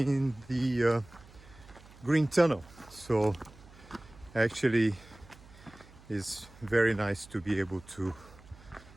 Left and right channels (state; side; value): noise; right; hum, 22 dB below the sound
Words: the green tunnel, so actually it's very nice to be able to